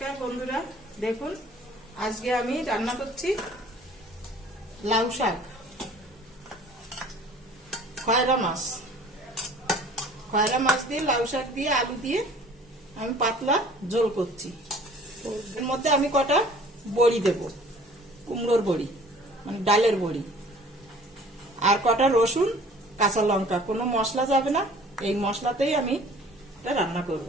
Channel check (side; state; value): both; normal; correlation 0.50